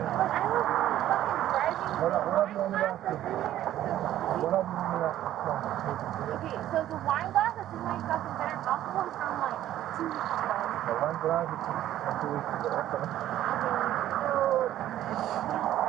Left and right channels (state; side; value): quieter; left; 12.8 dB